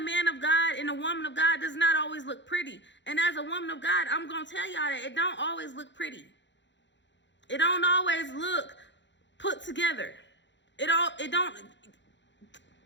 man of God and a woman of God does not always look pretty. And as a woman of God, I'm going to tell y'all that it don't always look pretty. It don't always look put together. Y'all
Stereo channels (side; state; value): right; late; 0.53 ms